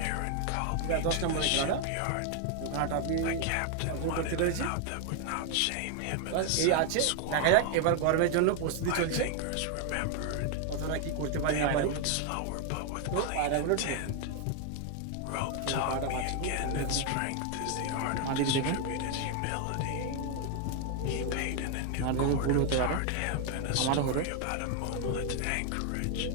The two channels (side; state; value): both; different; correlation 0.01